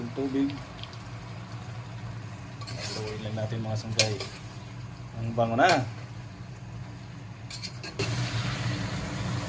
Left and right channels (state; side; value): identical; both; correlation 1.00